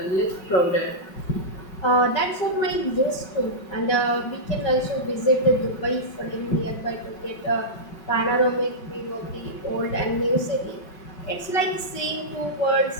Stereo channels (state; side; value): late; right; 5.3 ms